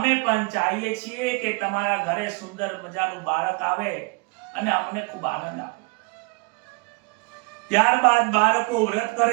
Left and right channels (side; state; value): left; quieter; 30.7 dB